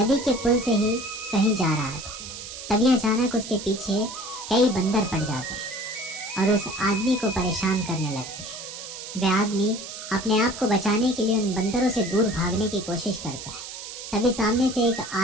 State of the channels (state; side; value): noise; right; hiss, 10 dB below the sound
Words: के पुल से ही कहीं जा रहा था, तभी अचानक उसके पीछे कई बंदर पड़ जाते हैं और उस आदमी को परेशान करने लगते हैं। वह आदमी अपने आप को बचाने के लिए उन बंदरों से दूर भागने की कोशिश करता है। तभी सामने से एक